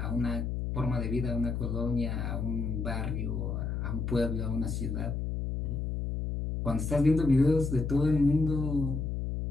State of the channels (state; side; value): noise; left; hum, 2 dB below the sound